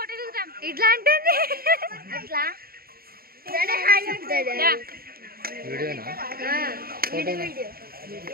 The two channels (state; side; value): late; left; 0.44 ms